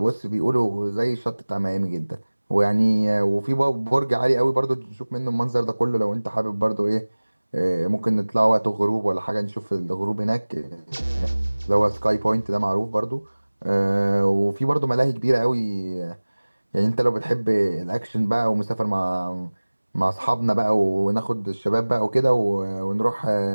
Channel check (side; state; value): both; inverted; correlation -1.00